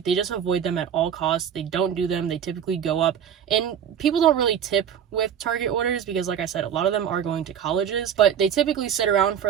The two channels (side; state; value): left; quieter; 8.7 dB